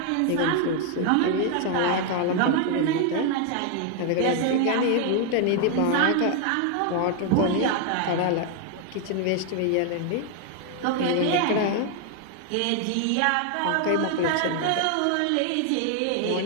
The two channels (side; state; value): both; different; correlation 0.00